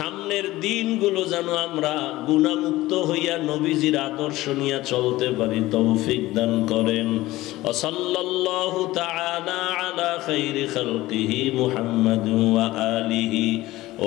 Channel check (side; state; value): right; quieter; 17.6 dB